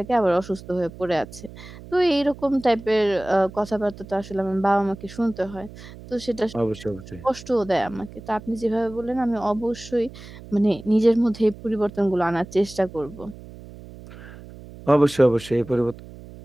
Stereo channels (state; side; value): noise; right; hum, 17 dB below the sound